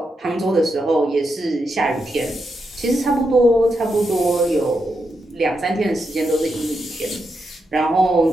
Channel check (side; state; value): both; normal; correlation 0.84